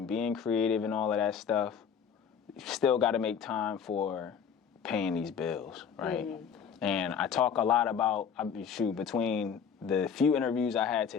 being creative and all of that stuff, you still got to make time for paying these bills, right? And I talk a lot about, between the few interviews I had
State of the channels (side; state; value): right; quieter; 7.2 dB